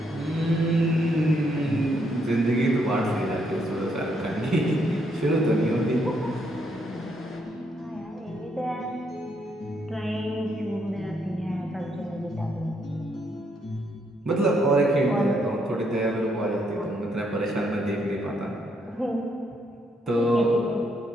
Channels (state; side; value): normal; both; correlation 0.74